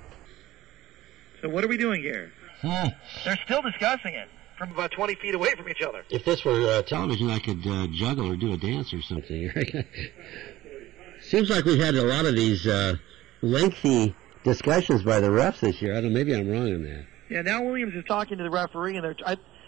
So what are we doing here? They're still discussing it from about 20 feet away from each other. If this were television, I could juggle or do a dance or something. Seems like we've had a lot of these lengthy discussions by the refs this year. I don't know, maybe I'm wrong on that. Yeah, now Williams is talking to the referee, and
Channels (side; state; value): left; quieter; 16.1 dB